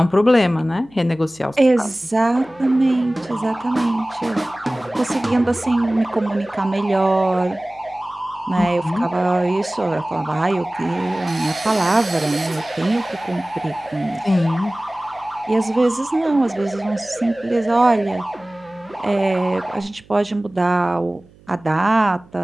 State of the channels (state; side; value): noise; right; hum, 27 dB below the sound